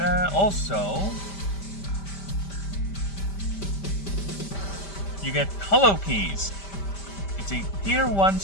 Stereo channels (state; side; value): late; right; 5.1 ms